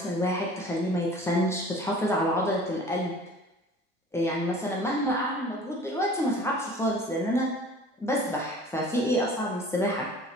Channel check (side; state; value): both; normal; correlation 0.46